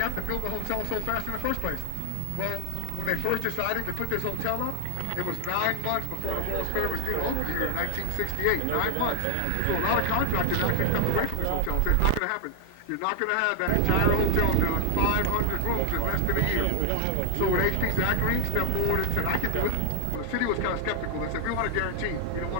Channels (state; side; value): different; both; correlation 0.00